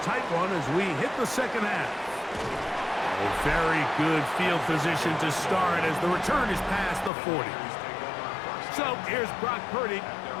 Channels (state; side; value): drops out; right; at 7.1 s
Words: one as we hit the second half. A very good field position to start as the return is past the 40. So here's Brock Purdy